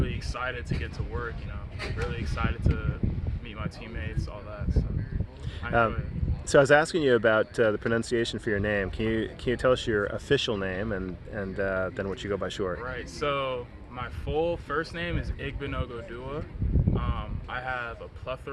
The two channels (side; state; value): both; identical; correlation 1.00